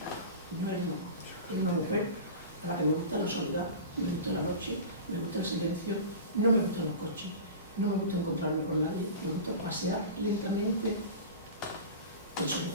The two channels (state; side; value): inverted; both; correlation -0.32